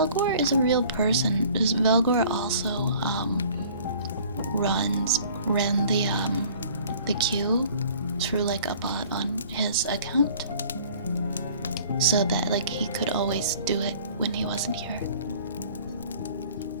is a real person. Velgor also ran the queue through like a bot on his account, so that like he could always do it when he wasn't here.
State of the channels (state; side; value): inverted; both; correlation -0.51